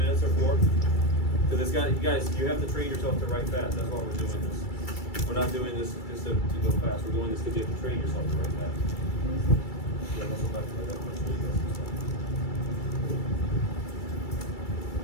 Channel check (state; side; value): late; right; 2.3 ms